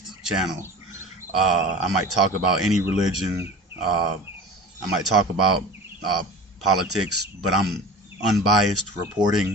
channel. I might talk about any religion. I might talk about politics, but I'm unbiased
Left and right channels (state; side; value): normal; both; correlation 0.36